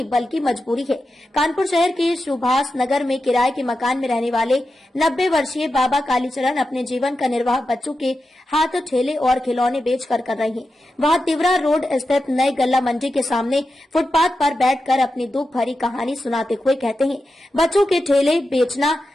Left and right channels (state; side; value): normal; both; correlation 0.90